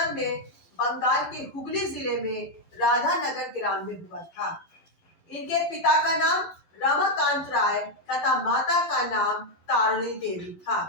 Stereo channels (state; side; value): late; right; 12 ms